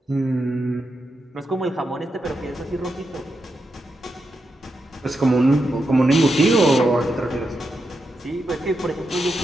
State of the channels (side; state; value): both; normal; correlation 0.86